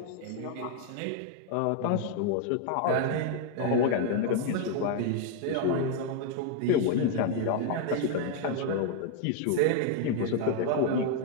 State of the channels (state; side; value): different; both; correlation 0.00